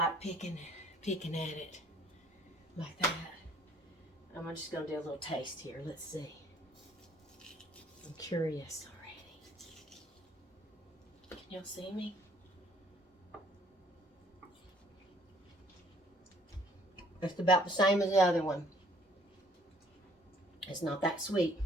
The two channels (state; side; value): normal; both; correlation 0.60